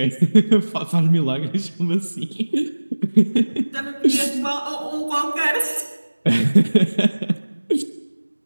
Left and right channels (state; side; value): inverted; both; correlation -1.00